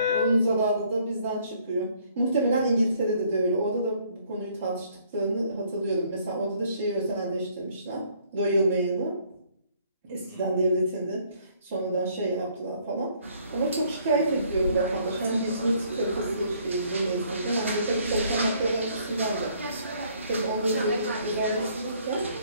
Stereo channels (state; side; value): inverted; both; correlation -0.63